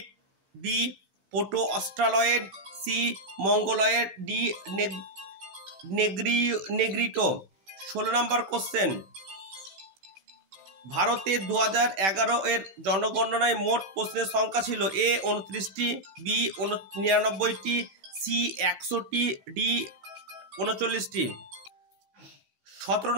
B proto Australoid, C Mongoloid, D Negrito. 16 নম্বর কোশ্চেন, ভারতে 2011 এর জনগণনায় মোট প্রশ্নের সংখ্যা ছিল? এ 29টি, বি 99টি, সি 100টি, ডি 39টি। 17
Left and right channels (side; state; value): left; late; 16 ms